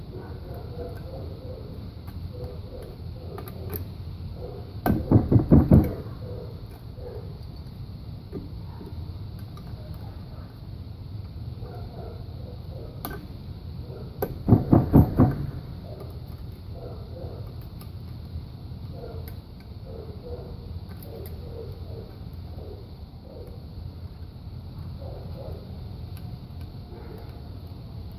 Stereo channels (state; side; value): identical; both; correlation 1.00